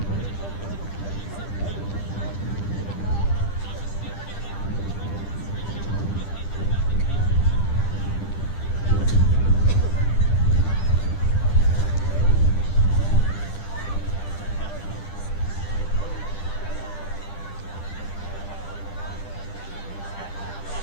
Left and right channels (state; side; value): late; right; 10 ms